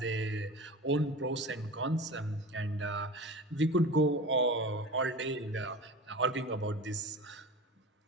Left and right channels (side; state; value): both; normal; correlation 0.33